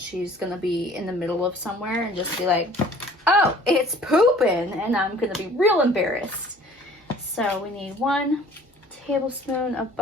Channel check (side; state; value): both; normal; correlation 0.51